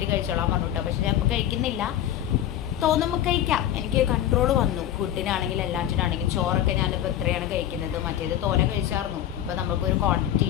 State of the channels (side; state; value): right; quieter; 11.4 dB